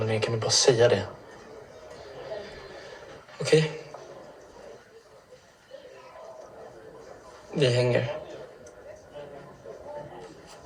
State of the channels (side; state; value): both; identical; correlation 1.00